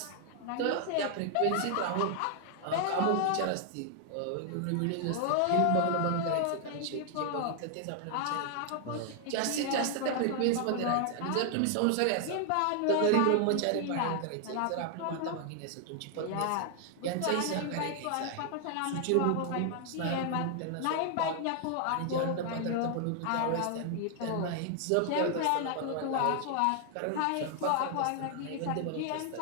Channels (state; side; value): different; both; correlation 0.00